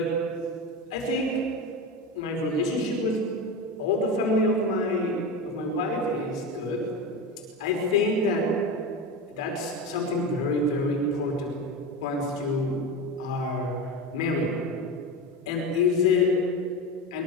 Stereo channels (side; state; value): both; normal; correlation 0.22